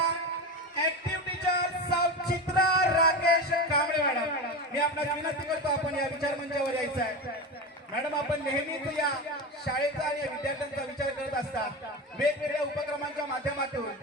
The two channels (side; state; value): both; normal; correlation 0.22